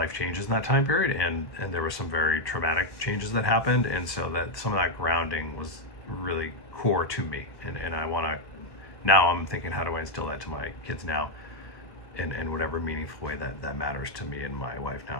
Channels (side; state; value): right; late; 1.3 ms